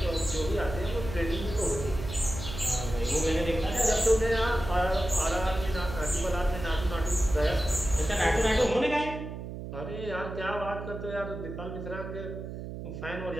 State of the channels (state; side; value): noise; right; hum, 8 dB below the sound